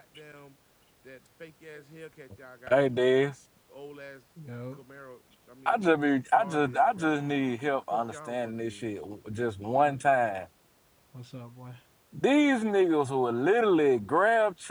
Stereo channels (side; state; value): both; identical; correlation 1.00